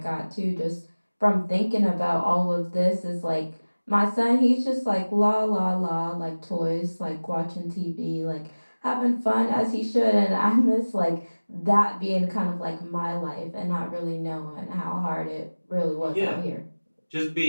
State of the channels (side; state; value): both; inverted; correlation -1.00